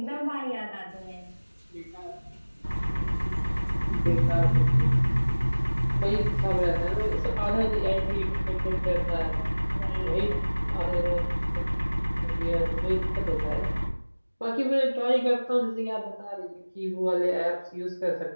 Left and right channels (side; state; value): both; inverted; correlation -1.00